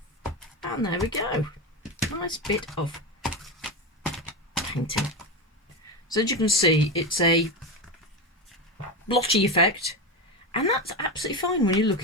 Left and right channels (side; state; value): both; normal; correlation 0.18